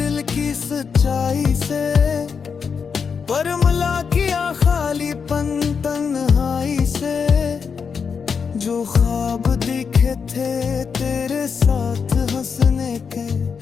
की सच्चाई से, पर मिला किया खालीपन तन्हाई से। जो ख्वाब दिखे थे तेरे साथ हंसने के,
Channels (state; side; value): quieter; right; 6.0 dB